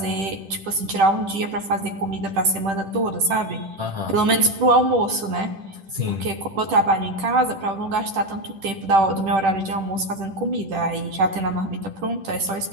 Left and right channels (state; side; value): late; left; 10 ms